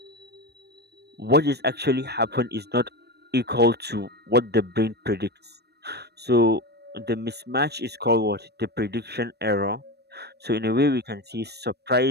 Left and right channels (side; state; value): left; late; 0.47 ms